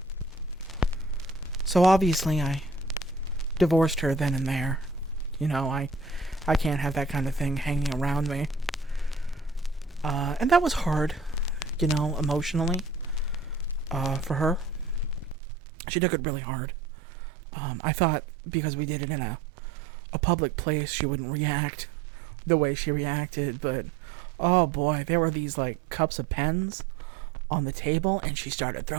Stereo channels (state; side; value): drops out; left; at 15.4 s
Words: So obviously I divorced her then and there. You know, I can't have that kind of thing hanging around me. And that was hard, you know, emotionally, for her. She took it really hard. I thought because we did it in a public place, she wouldn't react the way she reacted, but oh boy, there were these like cups of pens on the table and she started